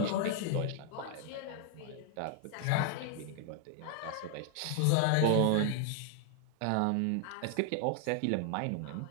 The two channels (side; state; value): both; different; correlation 0.00